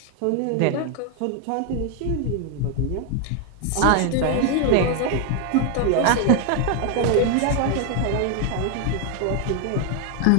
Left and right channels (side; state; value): both; different; correlation 0.01